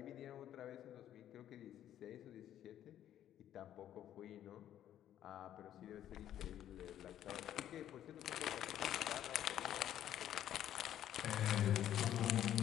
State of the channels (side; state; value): right; quieter; 11.3 dB